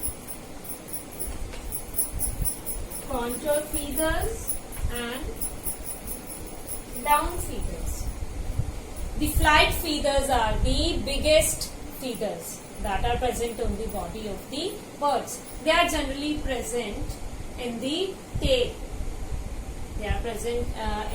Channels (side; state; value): both; identical; correlation 1.00